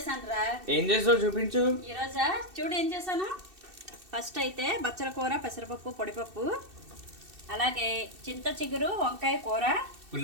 రా. ఏం చేసావు చూపించు. ఈరోజా చూడు ఏం చేశాను. ఫస్ట్ అయితే బచ్చల కూర, పెసరపప్పు, పొడిపప్పు, అలాగే చింత చిగురు వంకాయ కూర,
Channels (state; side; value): late; left; 2.7 ms